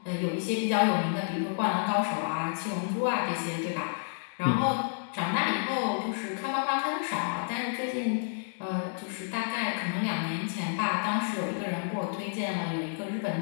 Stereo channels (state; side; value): silent; right; digital silence